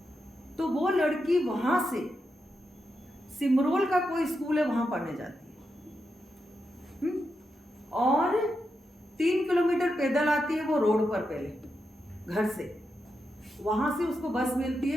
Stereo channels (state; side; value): normal; both; correlation 0.86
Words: तो वो लड़की वहां से सिमरोल का कोई स्कूल है वहां पढ़ने जाती है, और 3 किलोमीटर पैदल आती है वो रोड पर, पहले घर से, वहां से उसको बस मिलती